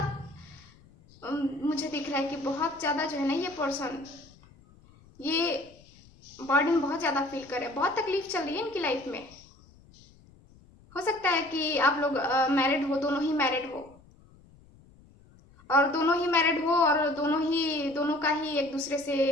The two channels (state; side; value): noise; left; rumble, 26 dB below the sound